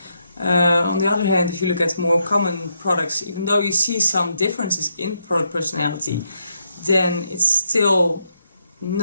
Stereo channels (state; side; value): inverted; both; correlation -0.79